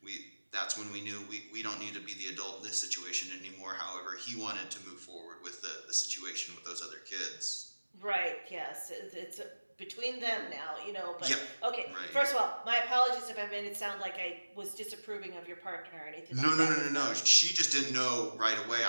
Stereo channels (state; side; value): inverted; both; correlation -1.00